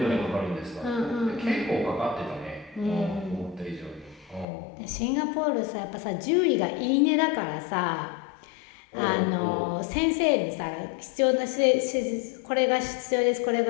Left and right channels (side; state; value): right; drops out; at 4.5 s